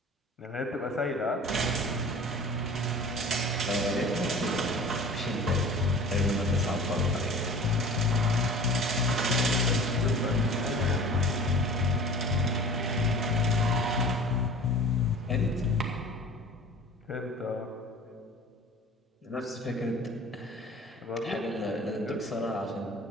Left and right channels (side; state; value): both; normal; correlation 0.42